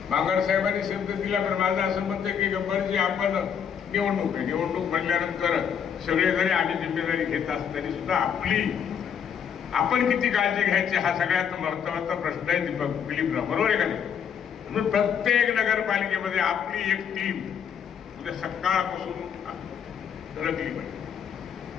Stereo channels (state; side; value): quieter; right; 7.8 dB